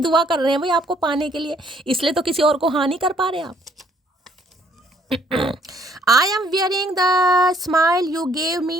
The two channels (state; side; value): normal; both; correlation 0.64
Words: कर रहे हैं भाई आपको पाने के लिए, इसलिए तो किसी और को हाँ नहीं कर पा रहे आप। I am wearing the smile you gave